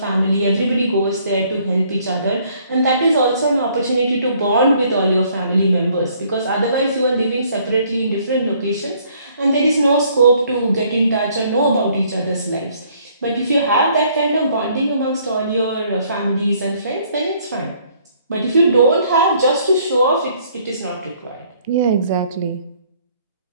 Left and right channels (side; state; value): both; inverted; correlation -0.63